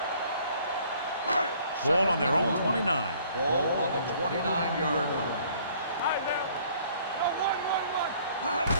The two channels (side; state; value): both; inverted; correlation -0.58